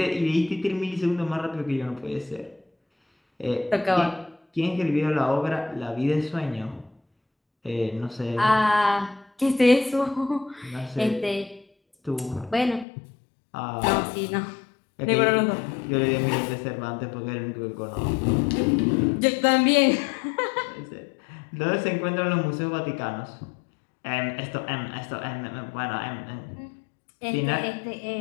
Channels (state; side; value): drops out; right; at 12.9 s